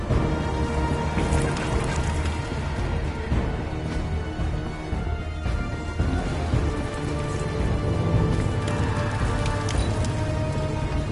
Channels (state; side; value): identical; both; correlation 1.00